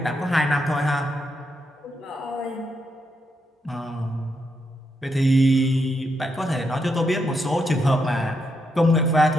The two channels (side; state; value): both; normal; correlation 0.81